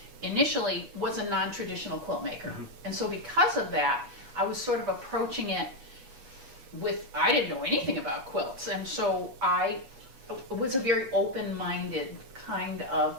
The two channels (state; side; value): late; left; 8.1 ms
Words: initially was a non-traditional quilt maker. And so because of that, I was sort of approaching it I didn't know anything about quilts, and so it was a very open-minded kind of